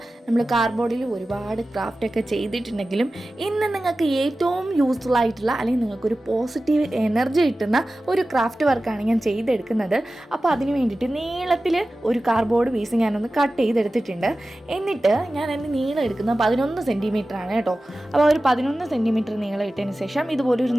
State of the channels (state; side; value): normal; both; correlation 0.95